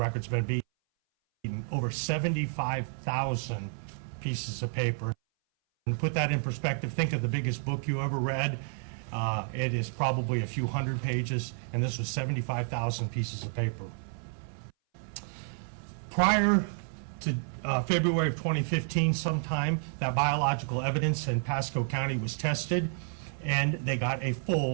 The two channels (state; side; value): silent; left; 58 dB below the other